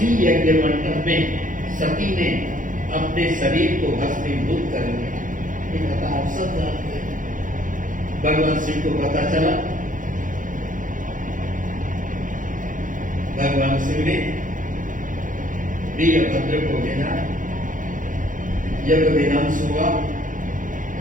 यज्ञ मंडप में सती ने अपने शरीर को भस्मीभूत कर दिया। ये कथा आप सब जानते हैं। भगवान शिव को पता चला, भगवान शिव ने वीरभद्र को भेजा, यज्ञ विध्वंस हुआ,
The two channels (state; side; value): late; left; 0.38 ms